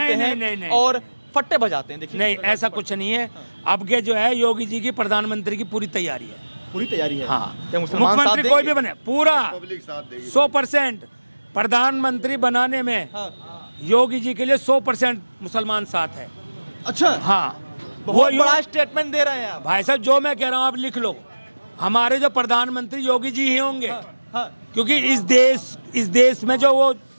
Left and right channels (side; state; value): both; inverted; correlation -1.00